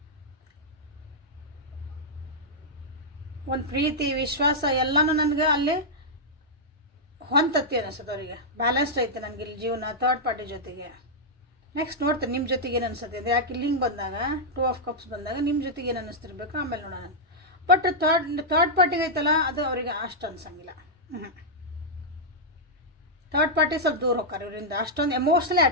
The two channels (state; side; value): normal; both; correlation -0.07